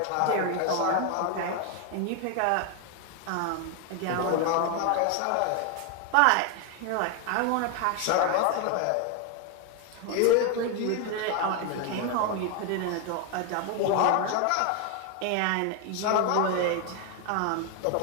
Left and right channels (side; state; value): both; different; correlation 0.01